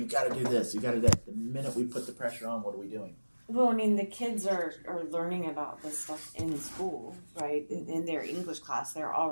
got to do this. You got to do that. The minute we put the pressure on, what are we doing? Well, I mean, the kids are learning about this stuff in school, right? In their English class, they're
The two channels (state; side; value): inverted; both; correlation -1.00